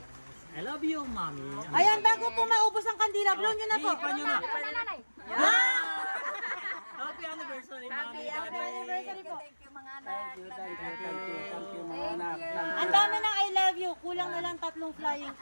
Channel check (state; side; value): inverted; both; correlation -1.00